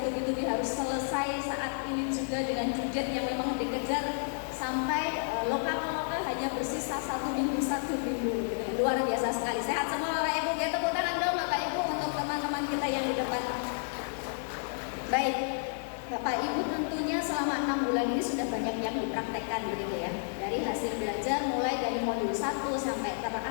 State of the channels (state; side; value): silent; right; digital silence